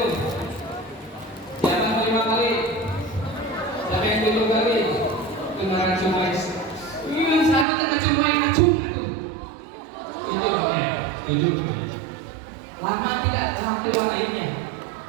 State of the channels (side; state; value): left; drops out; at 7.7 s